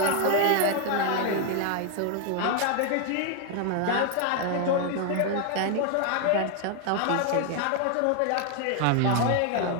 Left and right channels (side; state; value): both; different; correlation 0.00